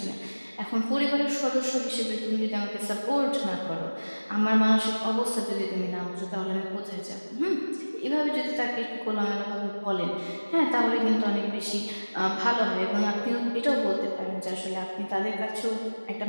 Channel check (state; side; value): inverted; both; correlation -1.00